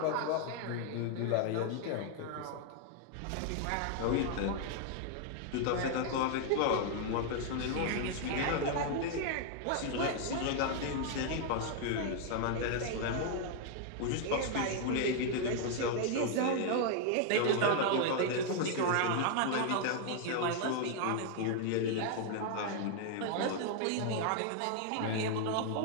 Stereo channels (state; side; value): different; both; correlation 0.00